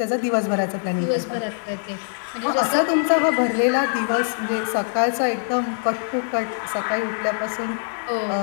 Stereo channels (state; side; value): silent; right; digital silence